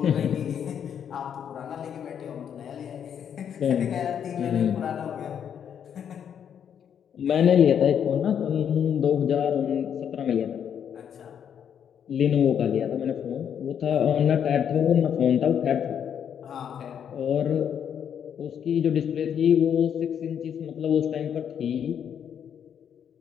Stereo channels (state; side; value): quieter; right; 8.5 dB